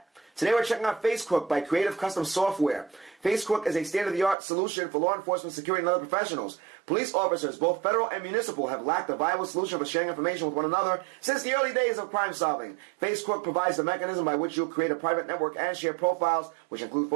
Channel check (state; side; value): drops out; left; at 4.4 s